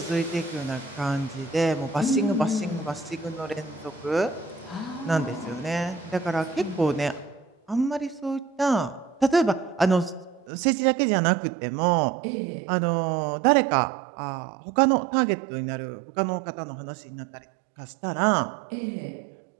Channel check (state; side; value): drops out; left; at 10.5 s